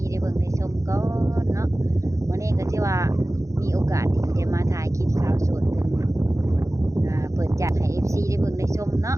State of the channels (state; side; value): late; left; 0.15 ms